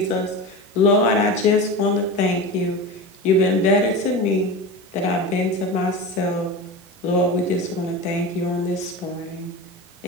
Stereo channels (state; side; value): normal; both; correlation 0.27